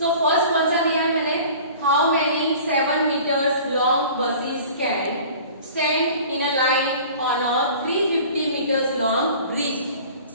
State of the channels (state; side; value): inverted; both; correlation -0.44